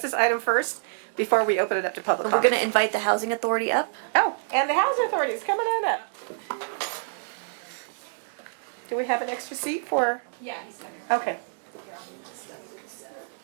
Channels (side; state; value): left; silent; 60 dB below the other